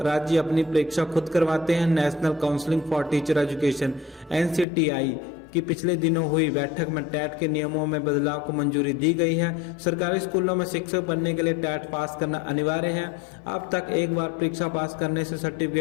राज्य अपनी परीक्षा खुद करवाते हैं। National counselling for teacher education NCTE की पिछले दिनों हुई बैठक में टेट के नियमों में बदलाव को मंजूरी दी गई है। सरकारी स्कूलों में शिक्षक बनने के लिए टेट पास करना अनिवार्य है। अब तक एक बार परीक्षा पास करने से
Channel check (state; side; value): drops out; right; at 4.7 s